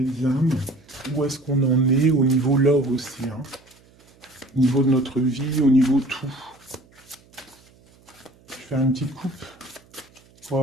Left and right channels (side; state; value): right; noise; hum, 29 dB below the sound